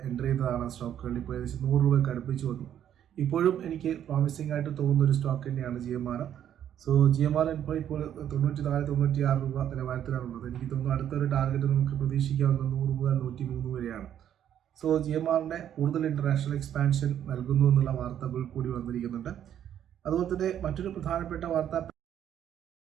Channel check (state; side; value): quieter; left; 10.2 dB